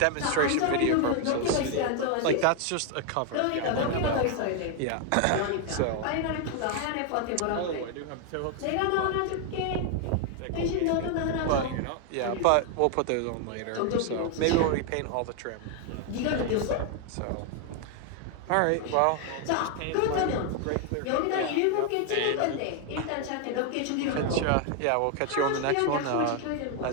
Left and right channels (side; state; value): both; different; correlation 0.01